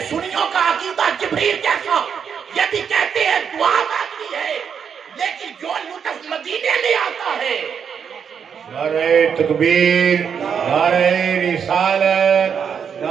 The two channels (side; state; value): left; quieter; 7.2 dB